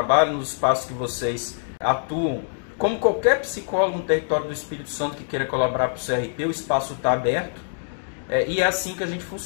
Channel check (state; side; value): silent; right; digital silence